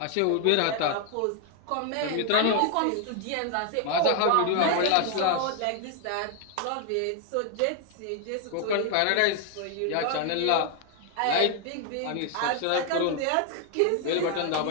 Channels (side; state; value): both; different; correlation 0.00